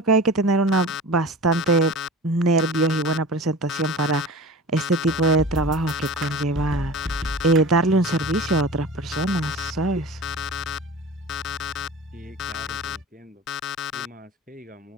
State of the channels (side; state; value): both; normal; correlation 0.36